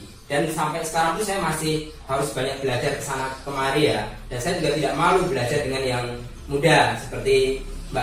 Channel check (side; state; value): both; identical; correlation 1.00